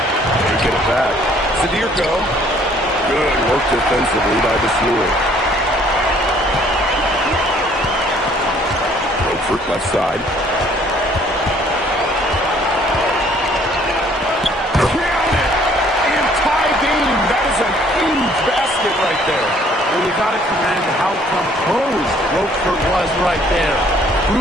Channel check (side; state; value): both; normal; correlation 0.60